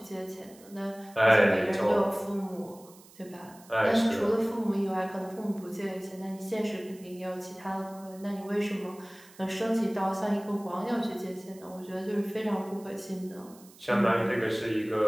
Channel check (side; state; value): right; noise; hiss, 24 dB below the sound